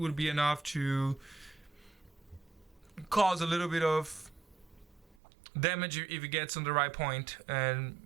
be enough to cause a little bit of damage if it gets on the right point, and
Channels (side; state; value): left; drops out; at 5.2 s